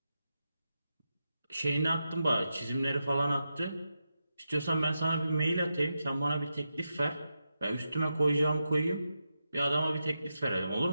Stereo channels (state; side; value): inverted; both; correlation -0.88